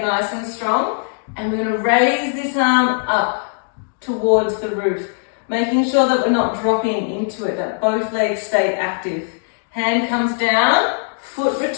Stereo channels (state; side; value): silent; right; digital silence